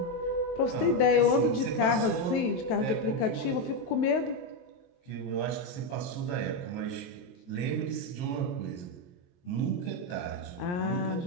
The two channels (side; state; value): right; late; 23 ms